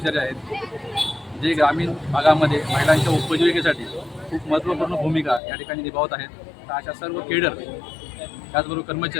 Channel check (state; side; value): drops out; right; at 5.4 s